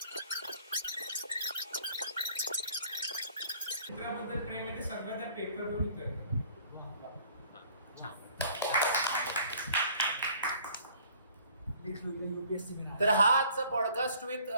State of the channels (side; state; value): both; inverted; correlation -0.55